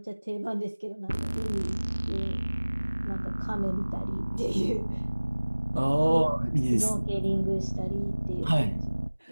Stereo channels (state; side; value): inverted; both; correlation -1.00